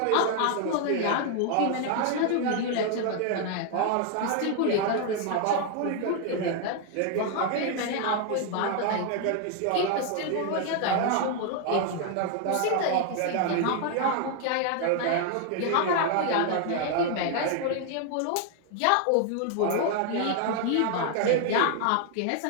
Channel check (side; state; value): both; different; correlation 0.00